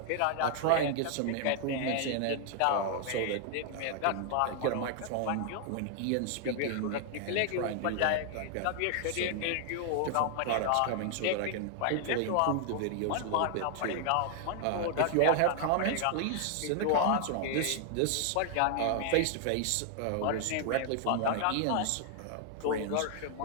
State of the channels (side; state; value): both; different; correlation 0.00